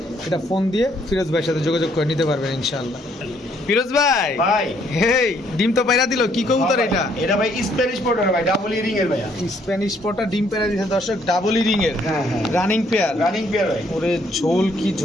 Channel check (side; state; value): both; normal; correlation 0.67